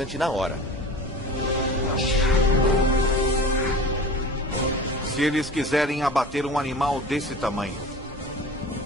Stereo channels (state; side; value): normal; both; correlation 0.38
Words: na hora. Se eles quiserem abater um animal desse tamanho,